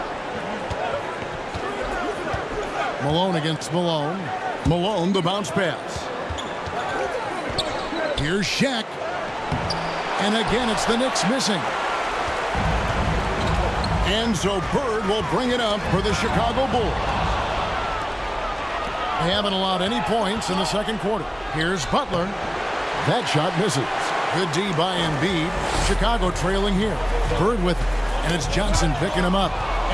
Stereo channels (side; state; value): both; identical; correlation 1.00